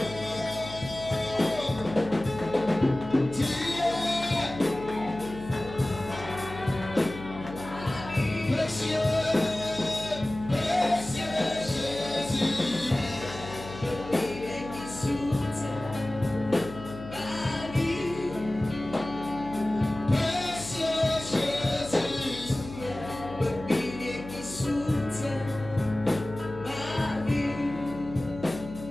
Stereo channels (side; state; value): left; noise; hum, 13 dB below the sound